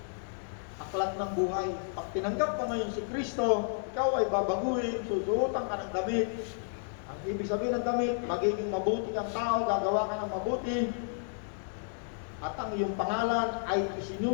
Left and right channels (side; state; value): right; silent; digital silence